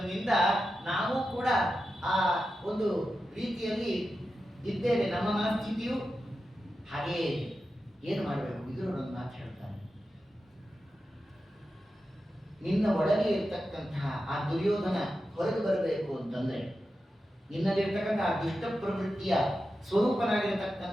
ನಾವು ಕೂಡ ಆ ಒಂದು ರೀತಿಯಲ್ಲಿ ಇದ್ದೇವೆ. ನಮ್ಮ ಮನಸ್ಥಿತಿಯು ಹಾಗೆಯೇ. ಏನು ಮಾಡಬೇಕು? ವಿದುರರನ್ನು ಮಾತು ಹೇಳ್ತಾರೆ. ನಿನ್ನ ಒಳಗೆ ಇರ್ತಕ್ಕಂತಹ ಆ ದುರ್ಯೋಧನ ಹೊರಗೆ ಬರಬೇಕು ಅಂತಂದ್ರೆ, ನಿನ್ನಲ್ಲಿರ್ತಕ್ಕಂತಹ ದುಷ್ಟ ಪ್ರವೃತ್ತಿಯ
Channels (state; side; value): normal; both; correlation 0.91